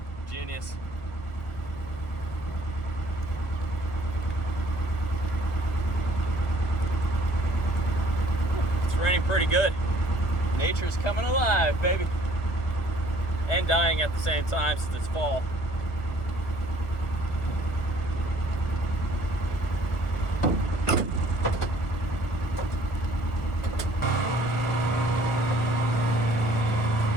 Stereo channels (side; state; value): right; late; 1.3 ms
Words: Genius. It's raining pretty good. Nature's coming alive, baby. And dying at the same time since it's fall.